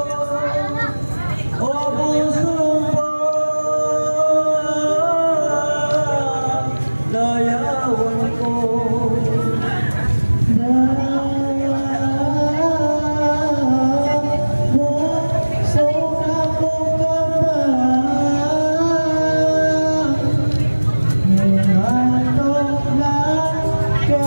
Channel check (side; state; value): both; inverted; correlation -1.00